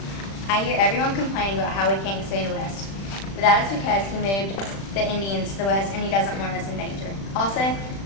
I hear everyone complaining about how we can't expand west. But that is because he moved the Indians to the west and he doesn't want us in danger. Also,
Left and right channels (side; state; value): right; late; 36 ms